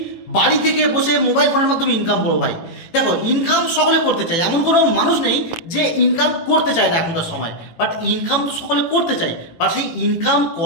বাড়ি থেকে বসে মোবাইল ফোনের মাধ্যমে ইনকাম করবো। ভাই দেখো, ইনকাম সকলে করতে চায়, এমন কোনো মানুষ নেই যে ইনকাম করতে চায় না এখনকার সময়। বাট ইনকাম তো সকলে করতে চায়, বাট সেই ইনকাম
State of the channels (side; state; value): right; late; 18 ms